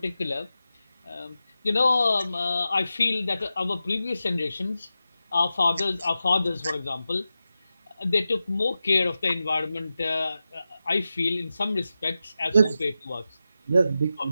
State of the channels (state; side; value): inverted; both; correlation -0.92